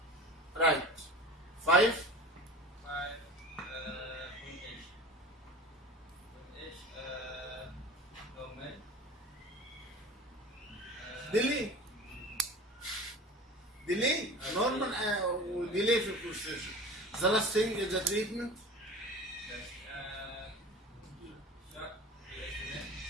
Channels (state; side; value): normal; both; correlation 0.37